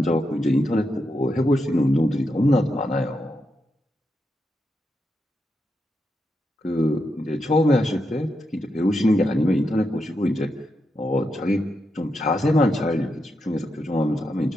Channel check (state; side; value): normal; both; correlation 0.84